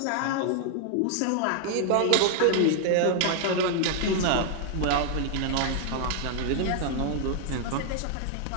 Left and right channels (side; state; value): both; different; correlation 0.00